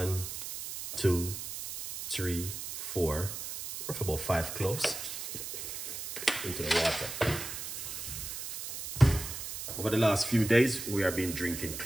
2, 3, 4, or about 5 cloves into the water. Over the last few days, we have been drinking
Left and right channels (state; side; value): noise; right; hiss, 7 dB below the sound